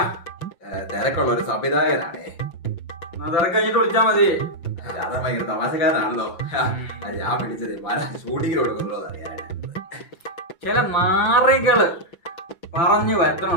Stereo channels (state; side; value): late; right; 5.9 ms